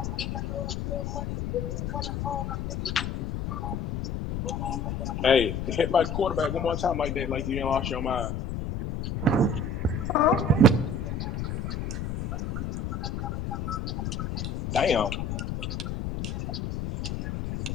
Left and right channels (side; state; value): left; noise; rumble, 3 dB below the sound